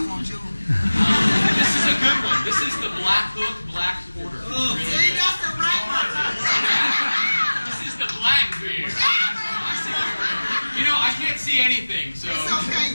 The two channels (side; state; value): both; inverted; correlation -1.00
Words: want you. This is a good one. This is the Black Hook Black Porter. Oh, see, that's the right one. This is the black beer. You know, I can't see anything, so